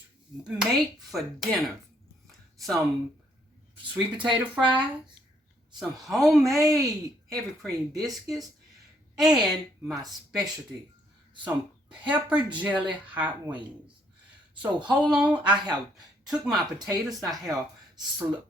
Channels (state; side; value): normal; both; correlation 0.68